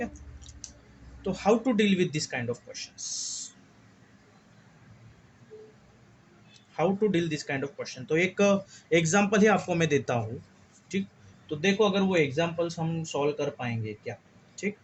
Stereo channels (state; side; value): identical; both; correlation 1.00